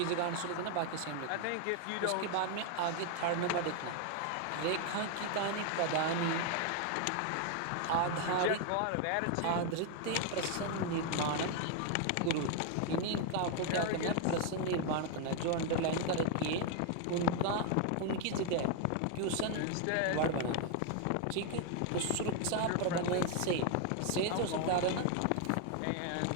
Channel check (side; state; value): both; different; correlation 0.01